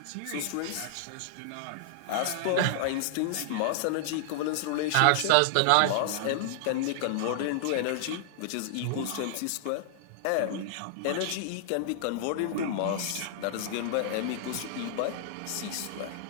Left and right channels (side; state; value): both; different; correlation -0.01